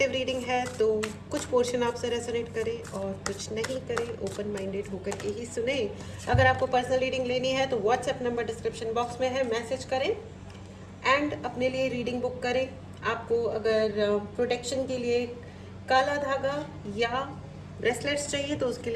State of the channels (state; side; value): identical; both; correlation 1.00